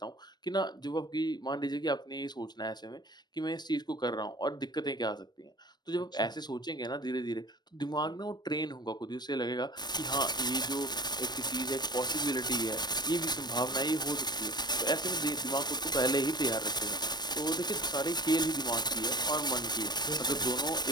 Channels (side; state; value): right; late; 0.20 ms